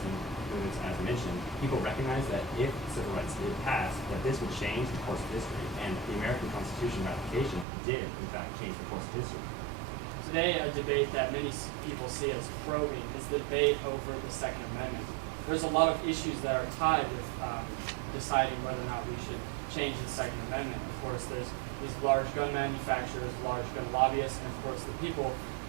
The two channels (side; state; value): left; drops out; at 7.7 s